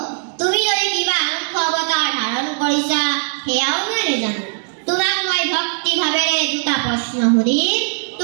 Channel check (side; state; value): left; silent; digital silence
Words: তুমি যদি কিবা আনন্দ অৱতাৰ ধাৰণ কৰিছা সেয়াও মই নাজানো। তোমাক মই ভক্তি ভাৱেৰে দুটা প্ৰশ্ন সুধিম,